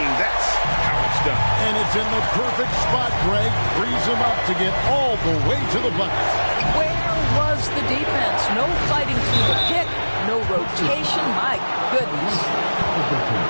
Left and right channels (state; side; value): inverted; both; correlation -1.00